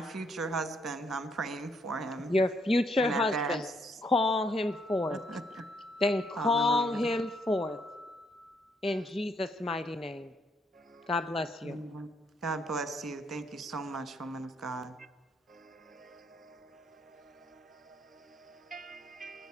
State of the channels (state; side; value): normal; both; correlation 0.72